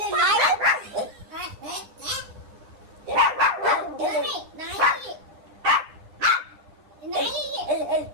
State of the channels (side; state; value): left; late; 9.9 ms